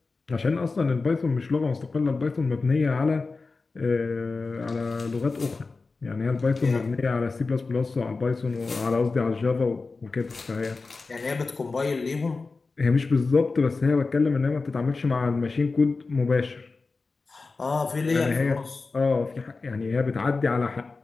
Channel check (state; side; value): quieter; right; 4.0 dB